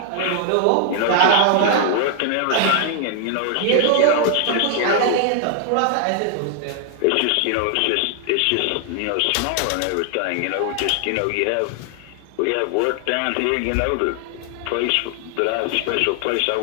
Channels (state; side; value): different; both; correlation 0.00